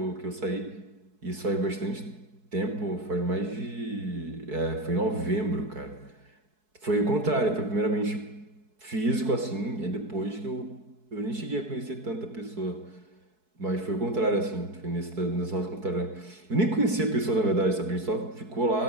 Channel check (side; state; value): left; late; 4.6 ms